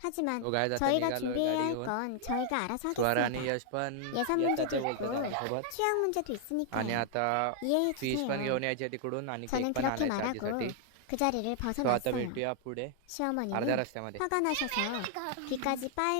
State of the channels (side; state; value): both; different; correlation 0.00